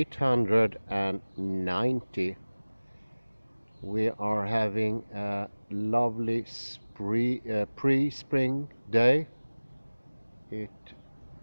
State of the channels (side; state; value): both; inverted; correlation -1.00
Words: We are having a lovely pre-spring day. It